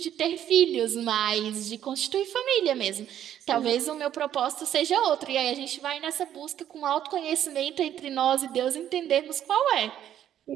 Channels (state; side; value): quieter; left; 10.8 dB